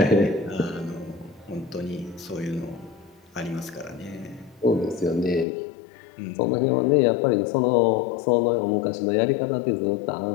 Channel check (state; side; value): drops out; right; at 5.5 s